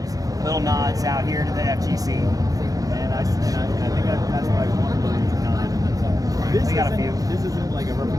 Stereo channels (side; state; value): left; late; 0.17 ms